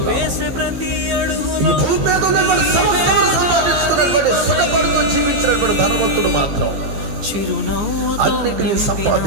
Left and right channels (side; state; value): left; late; 15 ms